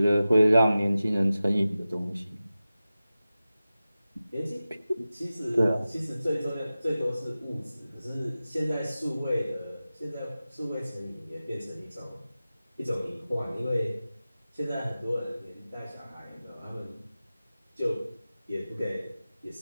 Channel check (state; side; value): inverted; both; correlation -0.95